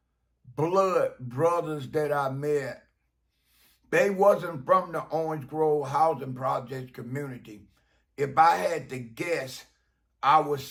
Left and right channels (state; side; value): identical; both; correlation 1.00